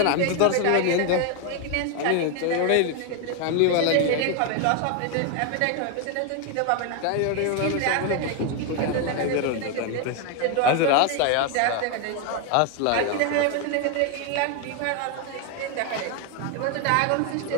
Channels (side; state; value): both; different; correlation 0.01